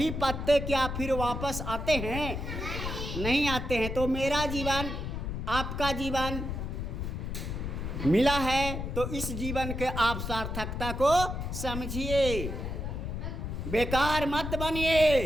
पत्ते क्या फिर वापस आते हैं? नहीं आते हैं। तो मेरा जीवन, आपका जीवन मिला है तो इस जीवन के आप सार्थकता को समझिए, बेकार मत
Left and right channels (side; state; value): left; noise; rumble, 4 dB below the sound